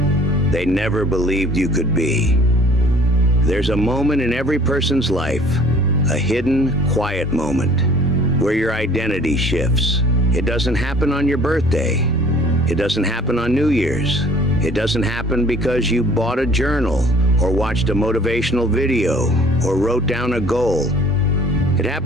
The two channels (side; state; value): both; normal; correlation 0.52